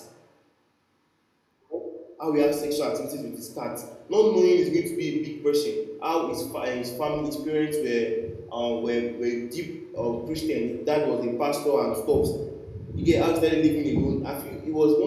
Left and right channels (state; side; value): identical; both; correlation 1.00